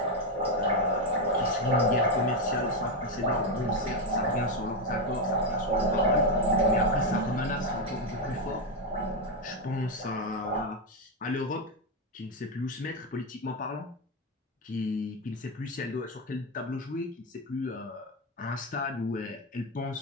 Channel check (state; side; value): normal; both; correlation 0.07